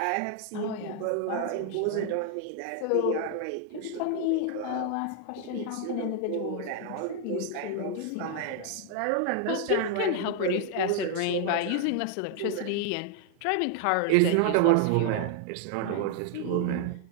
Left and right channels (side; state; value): both; different; correlation 0.00